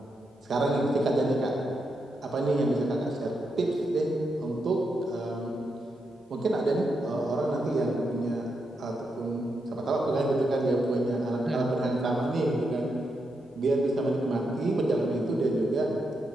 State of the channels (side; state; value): both; normal; correlation 0.84